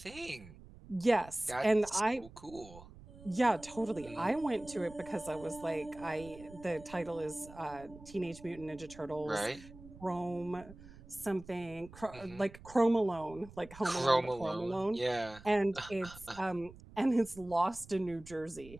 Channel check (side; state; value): right; noise; rumble, 19 dB below the sound